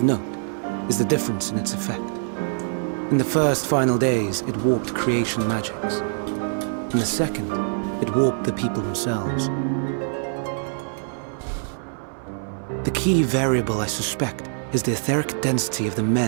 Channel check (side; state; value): left; silent; digital silence